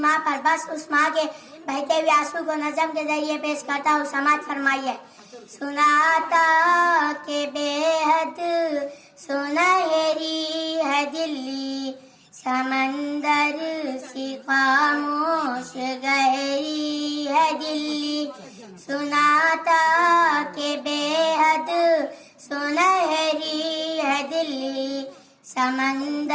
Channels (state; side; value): identical; both; correlation 1.00